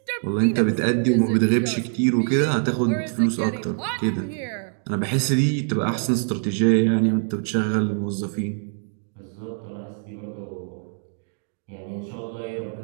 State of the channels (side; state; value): left; silent; 58 dB below the other